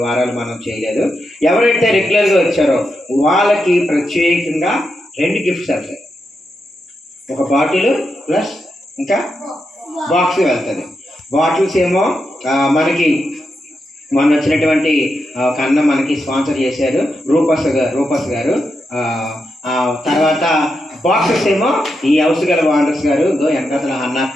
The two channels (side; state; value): both; normal; correlation 0.85